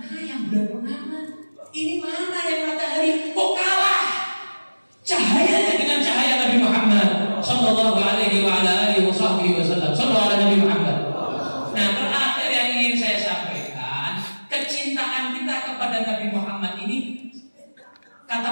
yang bulan purnama, ini mana yang matahari? Kok kalah cahayanya dengan cahaya Nabi Muhammad Sallallahu alaihi wa ala alihi wasallam. Sallallahu alaihi Nabi Muhammad. Nah, terakhir yang ingin saya sampaikan, kecintaan kita kepada Nabi Muhammad ini,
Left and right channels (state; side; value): inverted; both; correlation -1.00